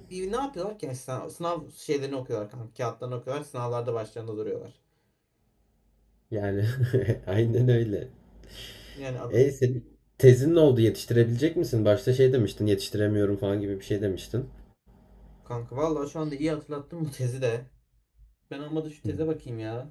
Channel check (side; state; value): both; identical; correlation 1.00